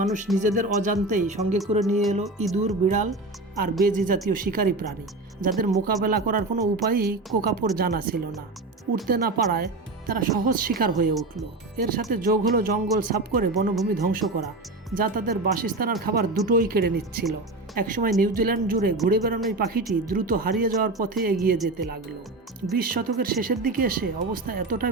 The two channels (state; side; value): quieter; left; 3.1 dB